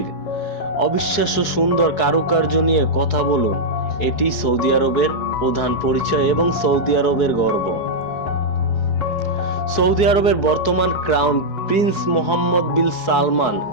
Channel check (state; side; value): late; right; 4.7 ms